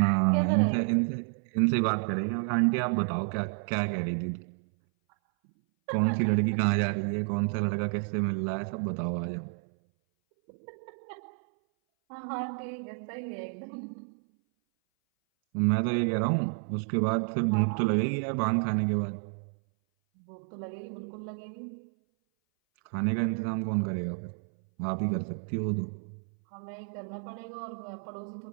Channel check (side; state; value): left; silent; 58 dB below the other